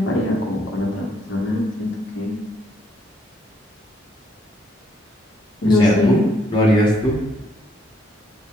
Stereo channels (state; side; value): normal; both; correlation 0.71